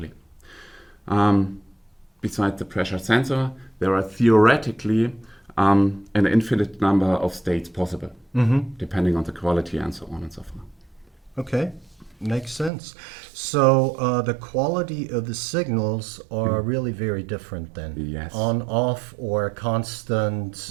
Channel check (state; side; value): drops out; left; at 12.7 s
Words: Besides the pressure sensor, there are theoretically an infinite number of states possible, depending on the quality and so on and so forth. Okay, makes sense. So the quality of the signals are really very different then. Yes. On, off, or constant,